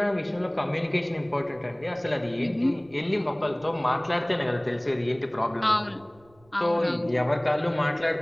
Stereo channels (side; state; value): right; noise; rumble, 29 dB below the sound